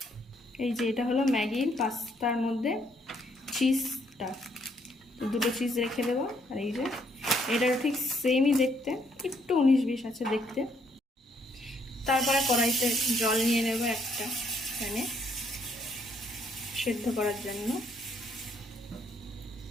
এই যে এটা হলো ম্যাগির পাস্তার মধ্যে চিজটা, তো দুটো চিজ রেখে দেবো। আর এই যে এটার ঠিক সেমই দেখতে, একটু 19-20 আছে দেখতে। তারপরে কড়াইতে জল নিয়ে নেব একটা প্যানে সেদ্ধ করার জন্য।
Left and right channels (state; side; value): normal; both; correlation 0.70